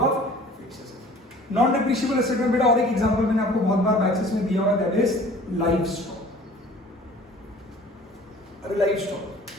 fix asset. Non depreciable asset में बेटा और एक एग्जांपल मैंने आपको बहुत बार बैचेस में दिया हुआ, दैट इज लाइफ स्टॉक। अरे लाइफ स्टॉक,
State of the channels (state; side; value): normal; both; correlation 0.48